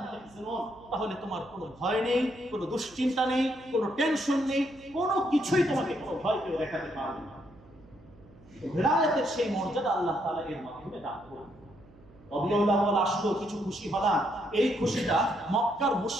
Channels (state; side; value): noise; right; hum, 24 dB below the sound